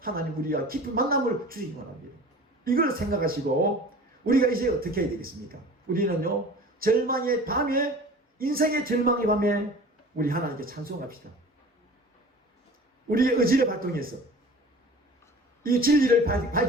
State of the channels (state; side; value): normal; both; correlation 0.42